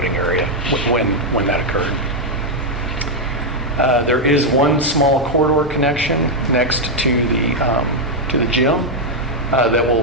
area when that occurred. There is one small corridor connection next to the gym that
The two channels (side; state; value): both; normal; correlation 0.00